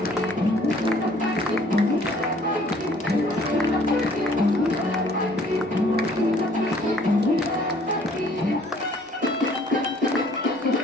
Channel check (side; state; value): both; normal; correlation 0.58